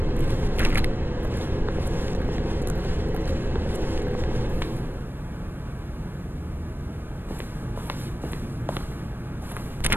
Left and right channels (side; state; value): left; late; 0.096 ms